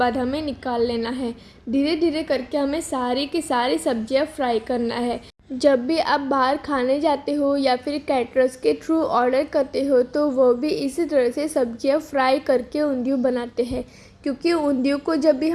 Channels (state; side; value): identical; both; correlation 1.00